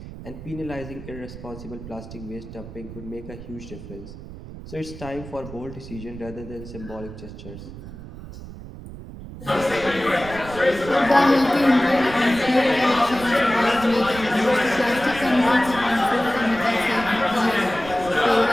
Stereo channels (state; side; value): noise; right; rumble, 13 dB below the sound